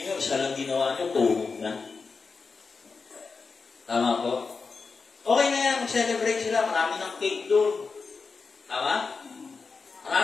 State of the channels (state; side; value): quieter; right; 4.7 dB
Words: isa lang ginawa niyo, tuhog na. Tama po? Okay na yan, mag-celebrate sila, marami ng cake doon. Tama?